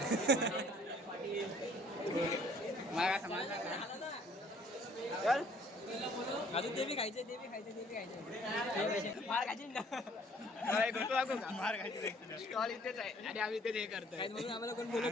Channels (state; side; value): normal; both; correlation 0.58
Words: मला काय समजलं चल अजून ते बी खायचं फार खायचे ना. मार खायची स्टॉल इथेच आहे आणि आम्ही इथेच हे करतोय. म्हणून आम्हाला कोण बोलत